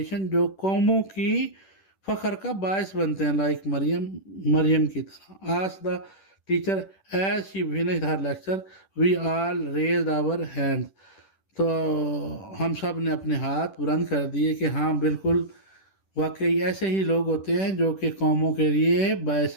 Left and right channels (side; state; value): right; late; 10 ms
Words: جو قوموں کی فخر کا باعث بنتے ہیں, لائک مریم کی طرح. As the teacher as she finished her lecture we all raised our hand. تو ہم سب نے اپنے ہاتھ بلند کر دیے کہ ہاں بالکل واقعی ایسے ہی لوگ ہوتے ہیں جو کہ قوموں کے لیے